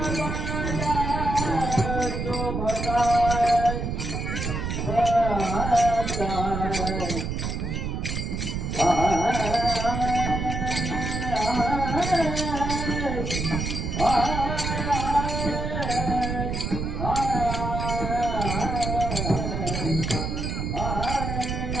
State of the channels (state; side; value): noise; right; rumble, 3 dB below the sound